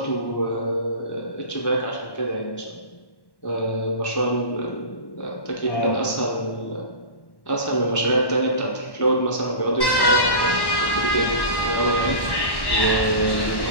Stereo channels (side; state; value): right; late; 1.1 ms